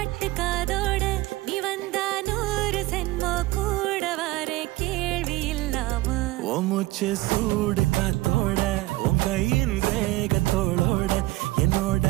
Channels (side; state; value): left; quieter; 19.0 dB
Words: காதோட நீ வந்தா 100 சென்மோ கூட வர கேள்வி இல்லாம மூச்சு சூடு காத்தோட உன் கையின் ரேகத்தோளோட என்னோட